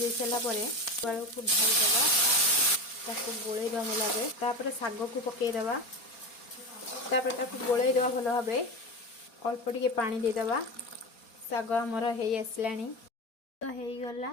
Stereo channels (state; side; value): late; right; 4.3 ms